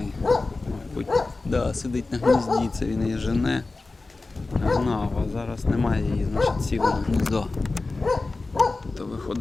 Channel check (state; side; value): quieter; right; 3.5 dB